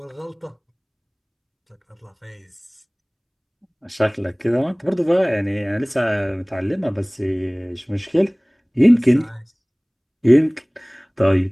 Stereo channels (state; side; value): identical; both; correlation 1.00